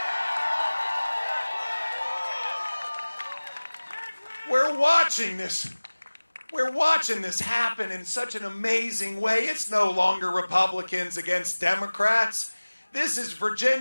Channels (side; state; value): both; inverted; correlation -1.00